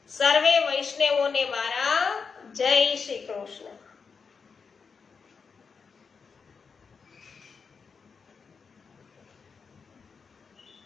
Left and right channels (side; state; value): right; quieter; 5.5 dB